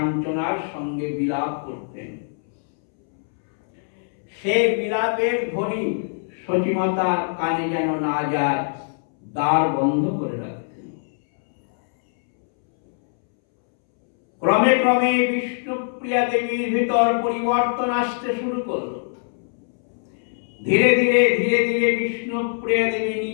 সঙ্গে বিলাপ করতেন। সে বিলাপের ধ্বনি সতীমাতার কানে যেন না যায়, দ্বার বন্ধ করে রাখতেন। ক্রমে ক্রমে বিষ্ণুপ্রিয়া দেবীর ভিতর পরিবর্তন আসতে শুরু করলো। ধীরে ধীরে ধীরে ধীরে বিষ্ণুপ্রিয়া দেবী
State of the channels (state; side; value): silent; right; 64 dB below the other